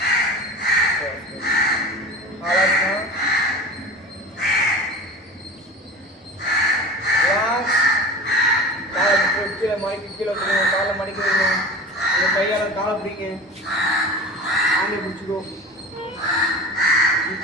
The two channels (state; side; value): normal; both; correlation 0.34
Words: ஆலாசனம். Relax. காலை கீழே மடக்கி கீழே வைக்கணும். காலை மடக்கி வைக்கணும். உங்கள் கையால் காலை பிடிங்க. ஆண்டை பிடிச்சிக்கோ.